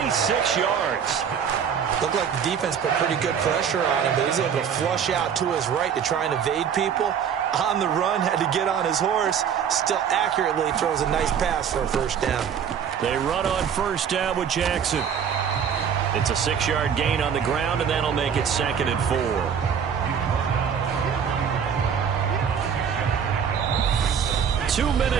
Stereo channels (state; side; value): quieter; left; 7.7 dB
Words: 26 yards. Looked like the defense put pretty good pressure on him, but he's able to flush out to his right to try and evade people. On the run, had to get on his horse. Still accurately throws a nice pass for a first down. They run on first down with Jackson. It's a 6-yard gain on the ground, and that'll make it 2nd and 4. Two